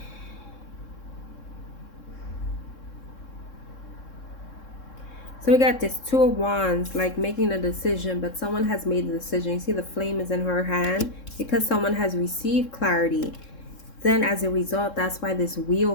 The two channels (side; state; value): right; late; 3.7 ms